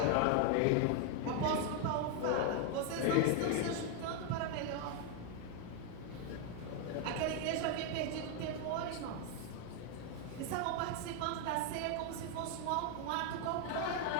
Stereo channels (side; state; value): both; different; correlation 0.00